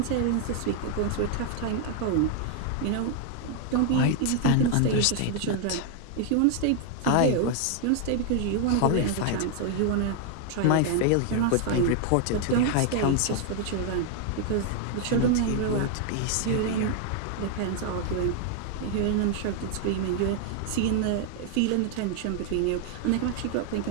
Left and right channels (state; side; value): different; both; correlation 0.00